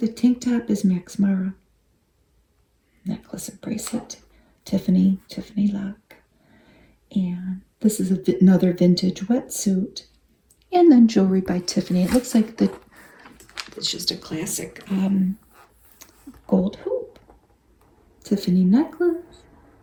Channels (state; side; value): identical; both; correlation 1.00